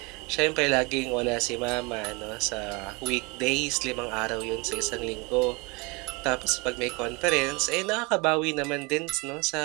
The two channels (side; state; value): left; quieter; 27.6 dB